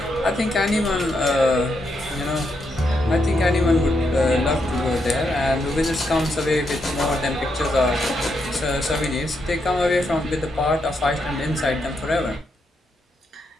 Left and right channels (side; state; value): both; normal; correlation 0.80